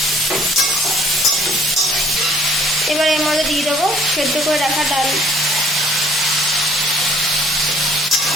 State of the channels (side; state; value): both; normal; correlation 0.57